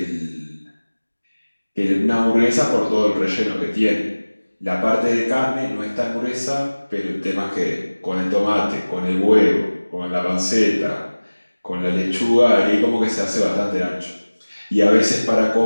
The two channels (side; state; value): both; inverted; correlation -1.00